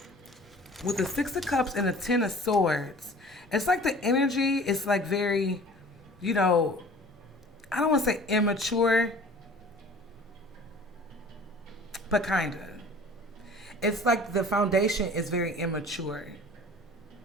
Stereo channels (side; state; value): both; normal; correlation 0.46